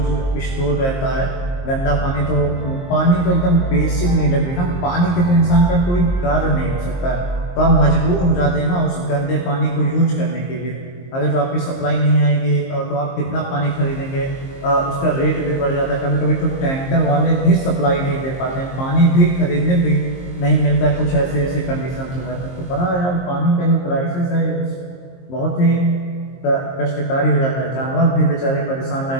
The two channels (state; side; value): late; right; 23 ms